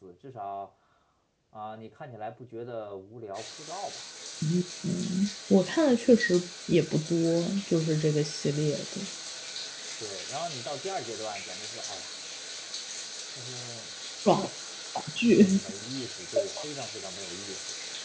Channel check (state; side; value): identical; both; correlation 1.00